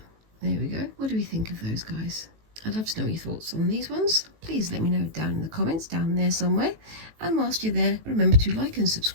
There we go. What do we think of those guys? I'd love to know your thoughts on these ones. Please let me know down in the comments, down there somewhere. And whilst you're there, remember to like and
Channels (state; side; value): late; left; 18 ms